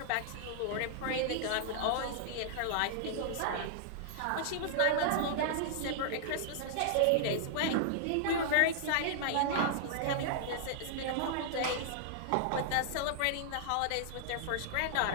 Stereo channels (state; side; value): different; both; correlation -0.01